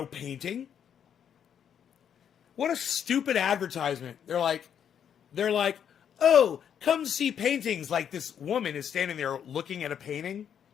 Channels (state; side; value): quieter; right; 8.6 dB